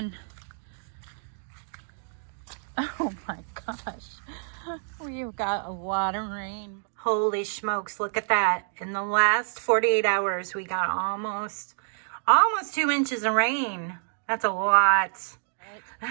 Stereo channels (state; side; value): silent; left; digital silence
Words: Oh my gosh. We've got a lot of rain. Holy smokes, look at that. In the last 48 hours, we got almost 2 inches of rain. That's a lot.